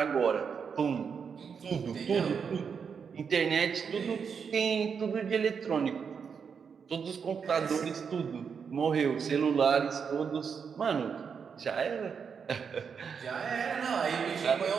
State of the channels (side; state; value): left; quieter; 6.4 dB